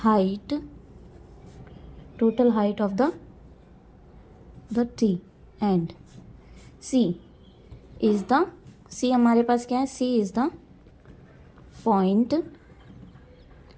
height of the tree and C हमारे पास क्या है, C is the point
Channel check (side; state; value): both; identical; correlation 1.00